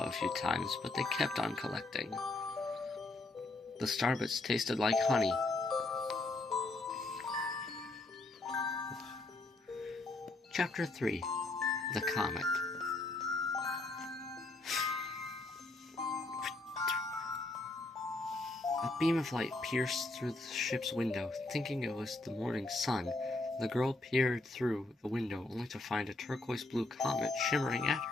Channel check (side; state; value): right; quieter; 3.0 dB